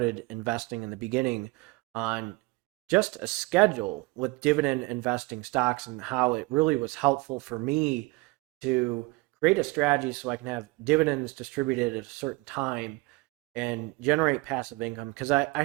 investing in the beginning on just a schedule with dividend investing stocks and how it really was helpful for me to create a strategy so I can have dividends distributed at a certain time and generate passive income because I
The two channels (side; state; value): left; quieter; 24.2 dB